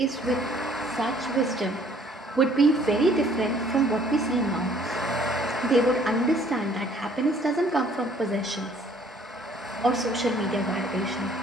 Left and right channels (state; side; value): normal; both; correlation 0.59